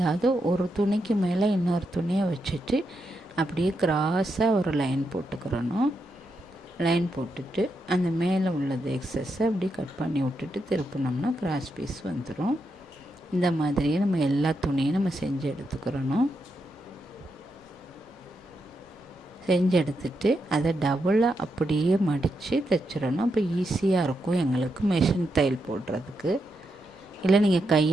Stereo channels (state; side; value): normal; both; correlation 0.83